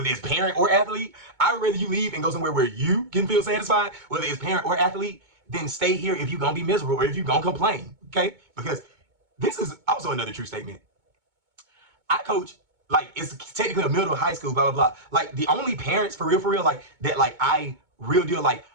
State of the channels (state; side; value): late; left; 2.2 ms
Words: it's parent or athlete. I would rather you leave and go somewhere where you can feel satisfied, whether it's parent or athlete, than stay here if you're going to be miserable or if you're going to complain. Okay? Because this is also another true statement. I coach, like, it's technically a middle high school, blah, blah, blah. Like, the only parents for real, like, that, like, I real deal, like,